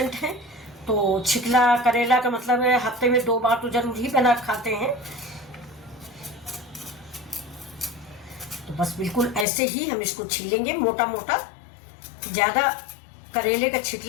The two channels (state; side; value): drops out; right; at 9.5 s